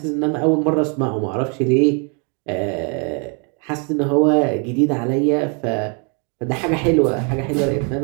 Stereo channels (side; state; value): left; quieter; 36.9 dB